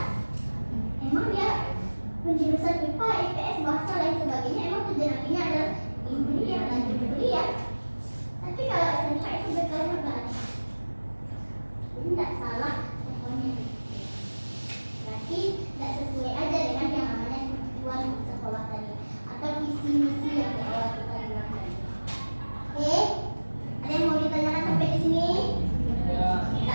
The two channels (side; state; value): both; inverted; correlation -1.00